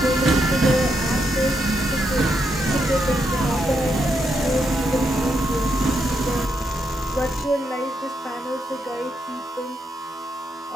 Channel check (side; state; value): both; normal; correlation 0.80